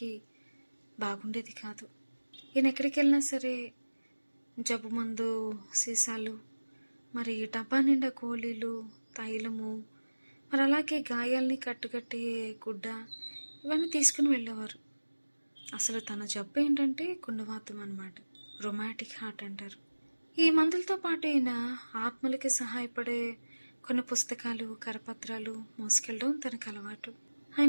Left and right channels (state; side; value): inverted; both; correlation -1.00